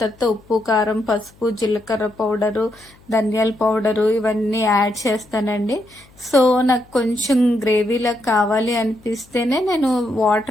తర్వాత ఉప్పు, కారం, పసుపు, జీలకర్ర పౌడరు, ధనియాల పౌడరు ఇవన్నీ యాడ్ చేస్తానండి. సో నాకు కొంచెం గ్రేవీలా కావాలి అనిపిస్తేనే నేను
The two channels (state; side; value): noise; left; hum, 28 dB below the sound